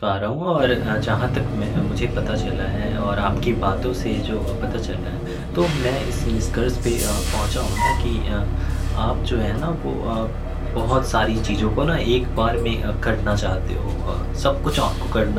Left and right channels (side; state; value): both; identical; correlation 1.00